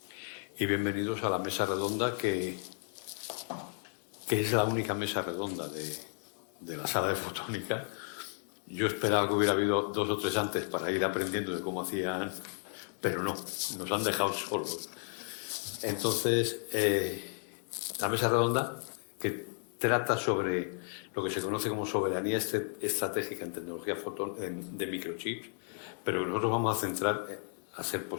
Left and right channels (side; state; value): right; silent; 55 dB below the other